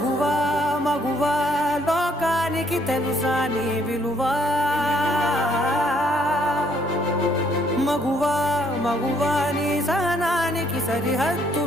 మగువా లోకానికి తెలుసా నీ విలువా మగువా మగువా నీ సహనానికి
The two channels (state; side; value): normal; both; correlation 0.67